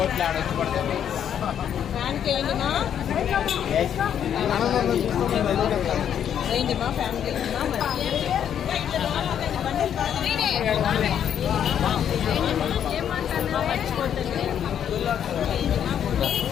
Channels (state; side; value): quieter; right; 9.2 dB